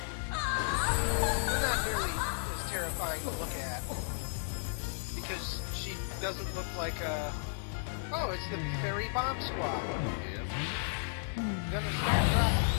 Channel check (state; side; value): silent; right; digital silence